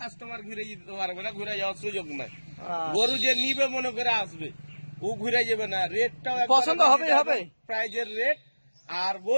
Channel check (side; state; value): both; inverted; correlation -1.00